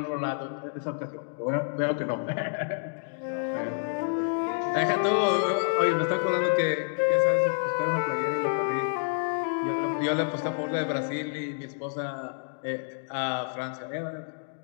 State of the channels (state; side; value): silent; right; digital silence